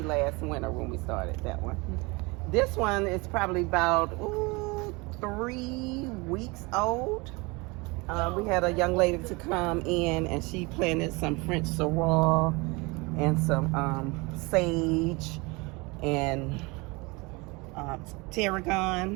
last winter when we started that one. This one is probably about 3 weeks old. We had a young lady to come in, and she planted some French sorrel and some sage and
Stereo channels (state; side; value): quieter; left; 26.2 dB